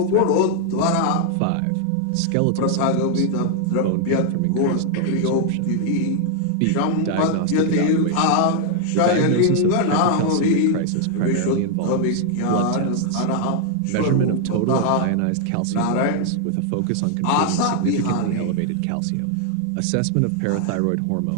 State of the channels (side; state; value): both; different; correlation 0.00